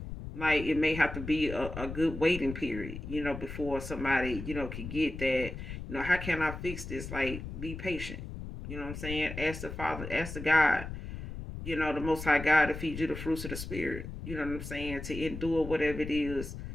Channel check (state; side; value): noise; left; rumble, 8 dB below the sound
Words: like, it may have to be a good waiting period, before somebody, can get that, how can I fix this? Like, be patient. You know what I'm saying? Ask the Father, ask the God, the Most High God, to feed you the fruits of the Spirit. You know what I'm saying? To endure whatever it is,